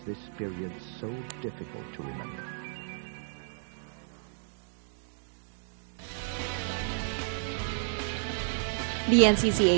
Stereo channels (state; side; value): silent; left; 56 dB below the other